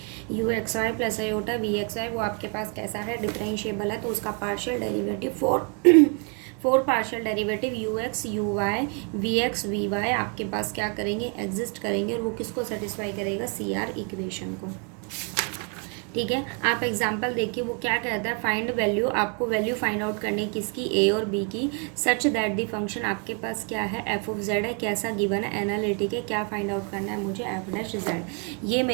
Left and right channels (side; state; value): left; quieter; 37.6 dB